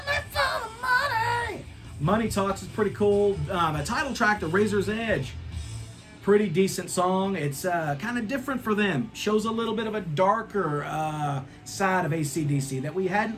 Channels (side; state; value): both; identical; correlation 1.00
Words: me for the money. Money Talks is pretty cool. The title track, The Razor's Edge, pretty decent song. It's kind of different for them. Shows a little bit of a darker side of AC/DC that we